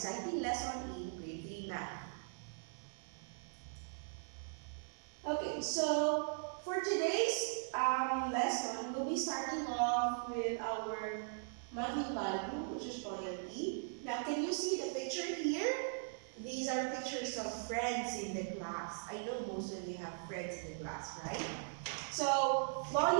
lesson in grade 3 math. Okay, so for today's lesson, we'll be starting off with our monthly value, which is loyalty. Now, can you see the picture here? These are pictures of friends in the class. I know most of you have friends in the class, right? So,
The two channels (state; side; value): silent; left; digital silence